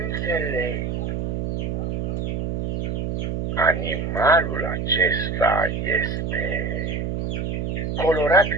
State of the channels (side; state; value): right; noise; hum, 1 dB below the sound